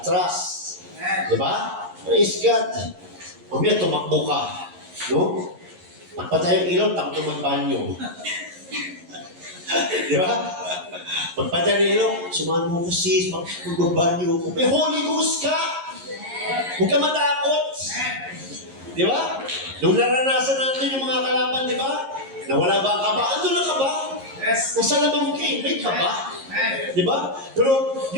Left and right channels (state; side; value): late; left; 11 ms